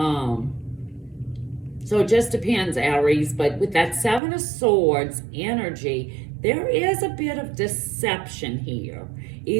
So it just depends, Aries. But with that Seven of Swords energy, there is a bit of deception here.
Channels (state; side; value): drops out; left; at 4.2 s